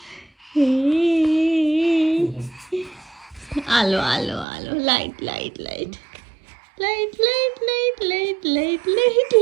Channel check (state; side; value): drops out; left; at 4.5 s